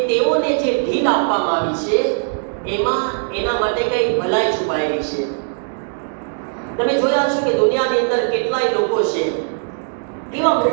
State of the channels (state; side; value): silent; left; digital silence